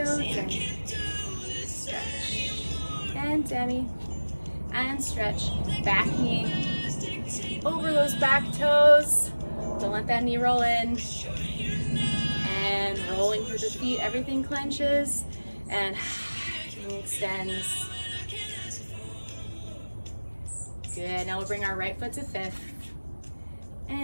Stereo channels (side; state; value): both; inverted; correlation -1.00